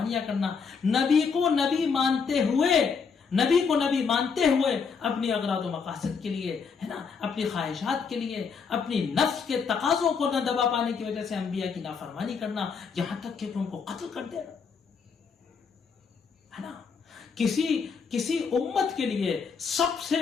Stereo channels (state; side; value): quieter; right; 5.7 dB